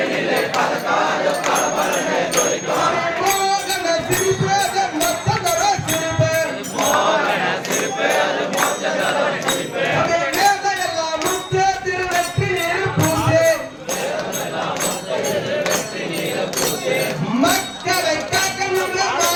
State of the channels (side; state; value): both; identical; correlation 1.00